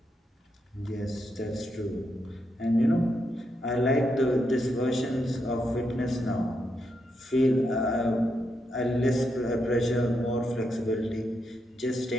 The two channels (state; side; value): normal; both; correlation 0.82